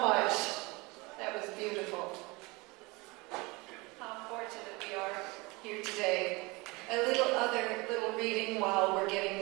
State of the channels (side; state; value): left; quieter; 25.0 dB